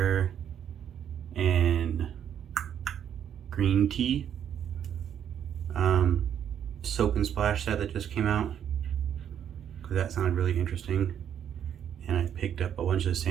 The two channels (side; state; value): left; quieter; 9.3 dB